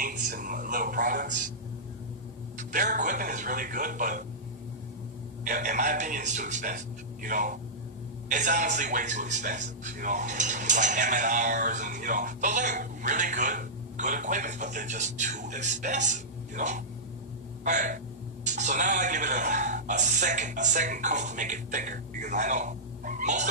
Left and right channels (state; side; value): normal; both; correlation -0.13